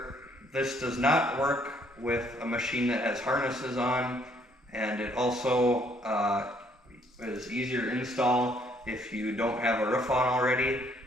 this does not work with a machine that has harnesses on, and it also is easier to install if you don't have a roof on already.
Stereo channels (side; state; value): both; normal; correlation 0.66